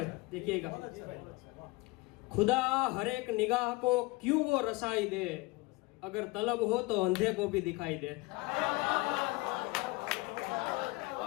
देखिएगा, खुदा हर एक निगाह को क्यों वो रसाई दे, अगर तलब हो तो अंधे को भी दिखाई दे।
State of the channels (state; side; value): quieter; right; 23.5 dB